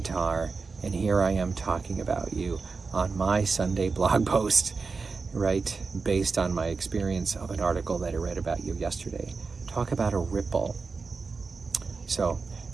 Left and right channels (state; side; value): quieter; left; 4.6 dB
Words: and here I am talking about you on my Sunday blog post, right? Based on my experience of an article that I read about you yesterday. Talk about a ripple. So